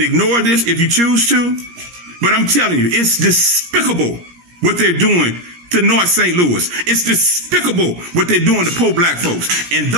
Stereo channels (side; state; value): left; late; 17 ms